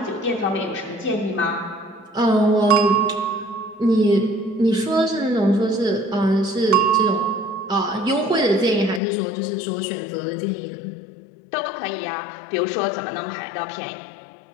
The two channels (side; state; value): right; drops out; at 9.0 s